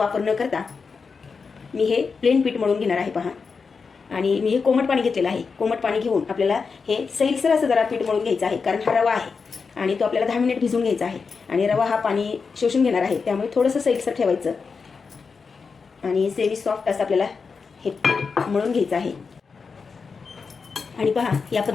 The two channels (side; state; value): right; quieter; 5.1 dB